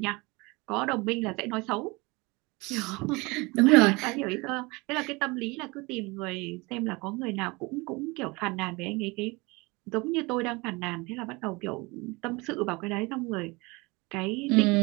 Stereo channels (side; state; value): left; quieter; 25.1 dB